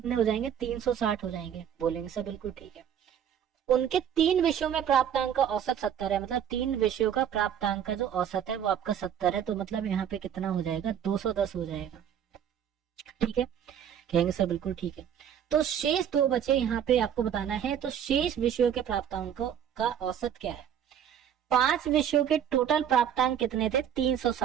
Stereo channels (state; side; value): quieter; left; 9.1 dB